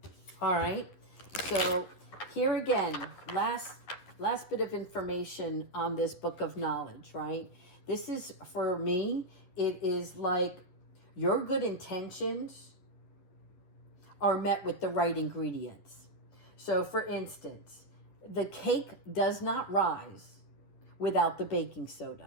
All right. So here again, last bit of information on this book of knowledge, right? This is, for me, it is like your good intentions are met with the right ingredients. So for instance, the cake does not rise without the baking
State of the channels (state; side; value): late; right; 11 ms